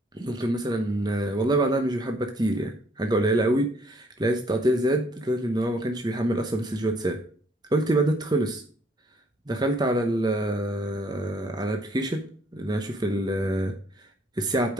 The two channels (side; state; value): both; normal; correlation 0.64